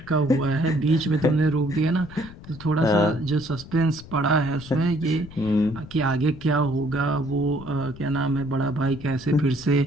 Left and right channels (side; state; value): left; noise; rumble, 17 dB below the sound